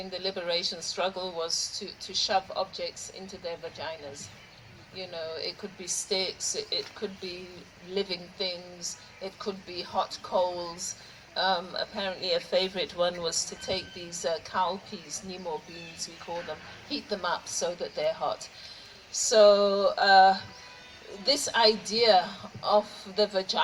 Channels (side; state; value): both; identical; correlation 1.00